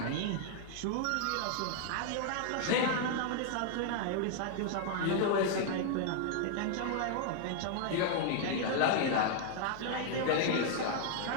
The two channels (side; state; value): both; different; correlation 0.00